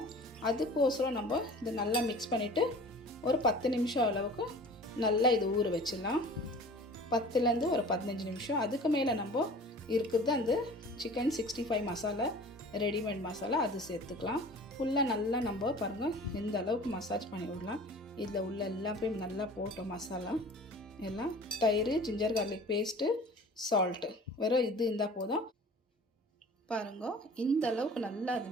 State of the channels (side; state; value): both; normal; correlation 0.43